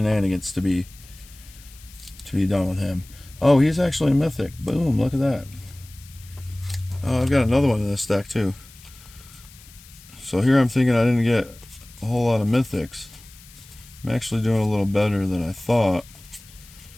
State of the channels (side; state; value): left; noise; hiss, 22 dB below the sound